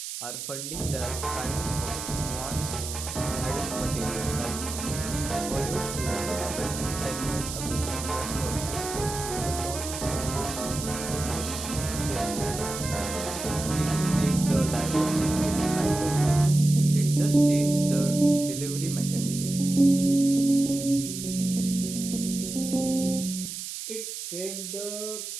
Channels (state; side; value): noise; right; hiss, 7 dB below the sound